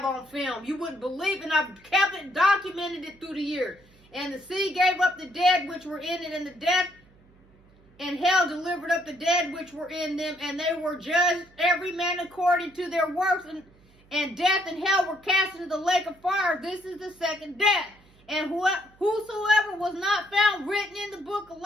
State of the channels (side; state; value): right; noise; hum, 29 dB below the sound